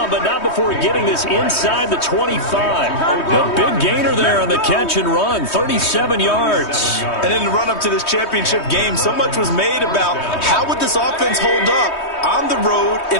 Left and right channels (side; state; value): right; late; 3.2 ms